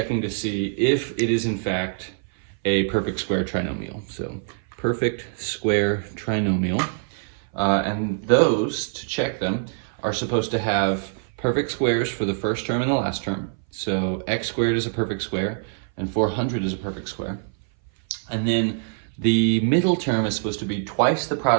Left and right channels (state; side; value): silent; left; 59 dB below the other